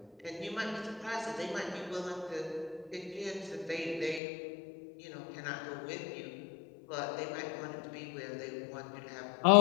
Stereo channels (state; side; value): drops out; right; at 4.2 s